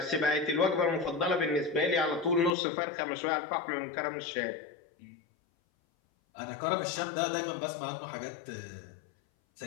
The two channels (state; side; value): drops out; right; at 2.6 s